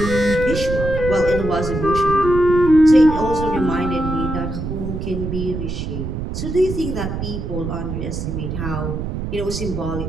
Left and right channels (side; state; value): right; noise; rumble, 5 dB below the sound